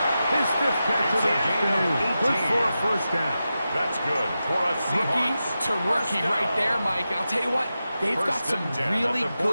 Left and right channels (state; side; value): inverted; both; correlation -0.91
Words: His fifth catch of the afternoon. Good for a first down. That's good for a Rookie Seahawks. to rookie right there, Mike. And I'll tell you what, they've got First some and 10 really at the